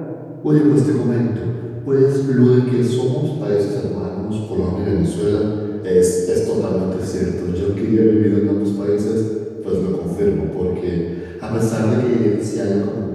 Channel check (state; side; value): identical; both; correlation 1.00